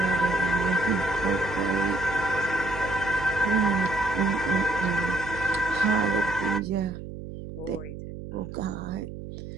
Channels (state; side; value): noise; right; hum, 10 dB below the sound